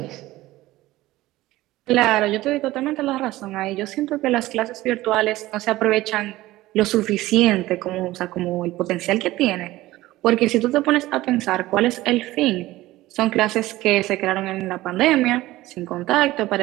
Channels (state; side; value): quieter; left; 17.3 dB